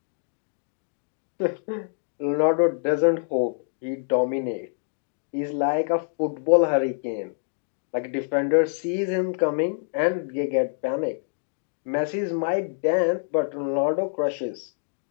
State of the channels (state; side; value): silent; right; digital silence